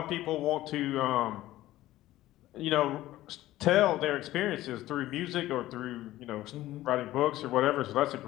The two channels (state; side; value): quieter; right; 15.5 dB